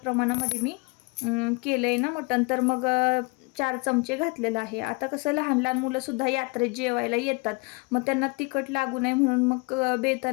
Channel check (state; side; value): quieter; right; 28.7 dB